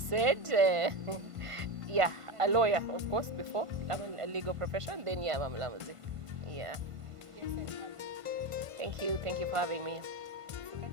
Yeah, a lawyer, of course, before. I'm in a legal profession, then yeah, I'm a Mulamuzi. Yeah. Thank you. Thank you for having me. So can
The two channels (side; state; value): left; late; 1.5 ms